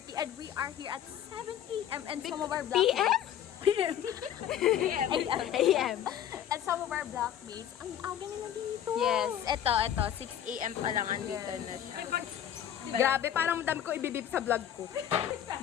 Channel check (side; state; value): right; quieter; 10.3 dB